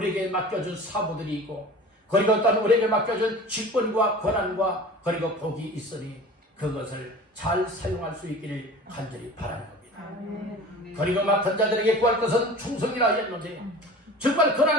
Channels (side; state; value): both; normal; correlation 0.39